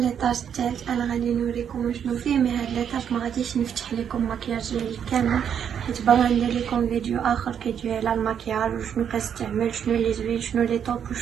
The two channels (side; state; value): left; quieter; 8.3 dB